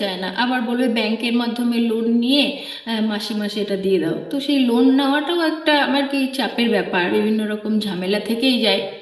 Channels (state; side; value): identical; both; correlation 1.00